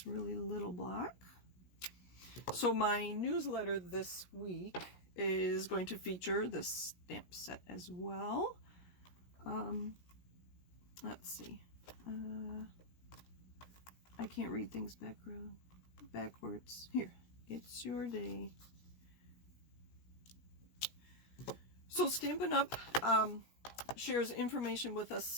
really little block. So my newsletter this week is going to feature this stamp set as well. Let's see. I can't read things backwards. Here, it's your day. So Stampin' Up! Shares information with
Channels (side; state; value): right; late; 17 ms